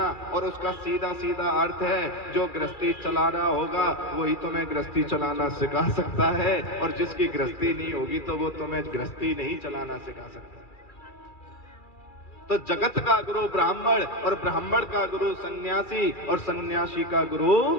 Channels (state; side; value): late; right; 2.3 ms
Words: और उसका सीधा सीधा अर्थ है जो गृहस्थी चला रहा होगा वही तुम्हें गृहस्थी चलाना सिखा सकता है, और जिसकी गृहस्थी नहीं होगी तो वो तुम्हें गृहस्थी नहीं चलाना सिखा सकता। तो जगत का गुरु ब्राह्मण, और ब्राह्मण का गुरु सन्यासी, और सन्यासी का गुरु